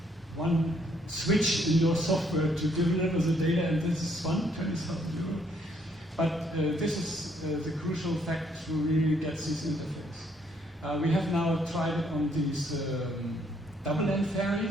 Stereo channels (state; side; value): normal; both; correlation 0.69